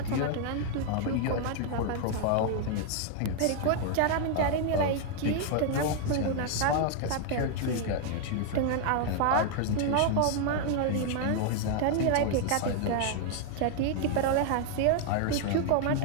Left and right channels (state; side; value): different; both; correlation 0.00